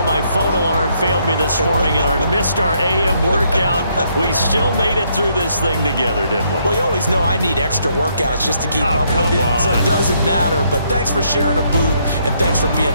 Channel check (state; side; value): inverted; both; correlation -0.72